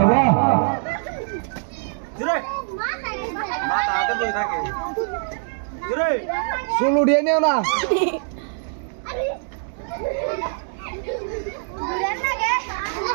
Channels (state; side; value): silent; left; digital silence